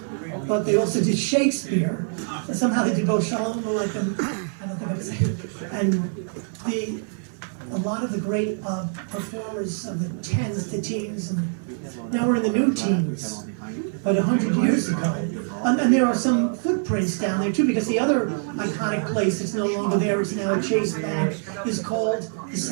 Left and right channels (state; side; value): silent; left; 62 dB below the other